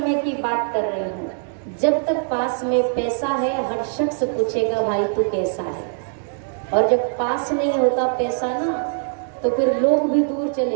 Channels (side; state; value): left; silent; digital silence